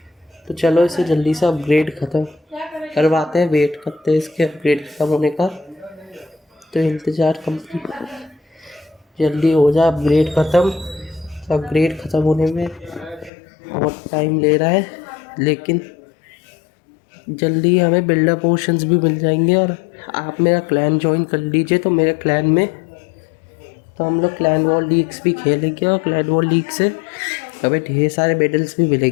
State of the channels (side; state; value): right; drops out; at 13.3 s